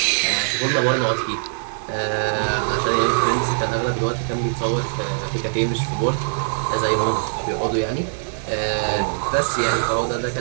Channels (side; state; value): left; silent; digital silence